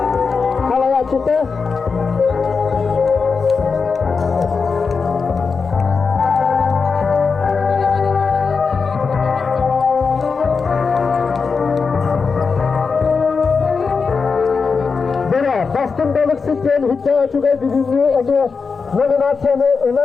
kalaya çıktı. Bastın balık sütyen hücca açıga bizimli ege nominasyonu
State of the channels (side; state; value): right; quieter; 5.1 dB